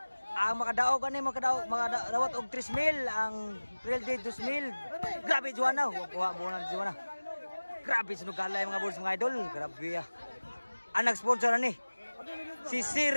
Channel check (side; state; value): both; inverted; correlation -1.00